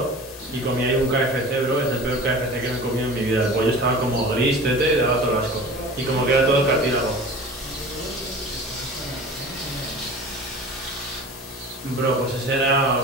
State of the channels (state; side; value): normal; both; correlation 0.39